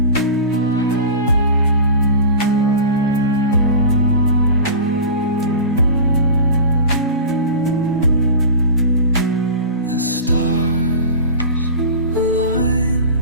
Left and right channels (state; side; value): inverted; both; correlation -0.31